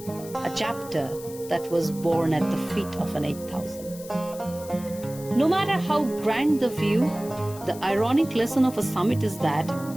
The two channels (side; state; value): left; noise; hiss, 17 dB below the sound